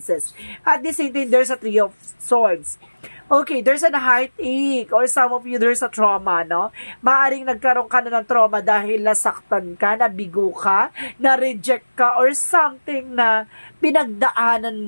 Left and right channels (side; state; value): both; inverted; correlation -1.00